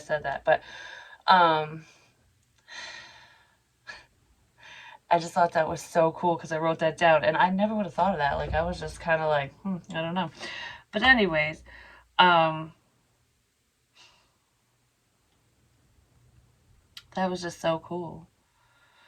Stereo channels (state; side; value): identical; both; correlation 1.00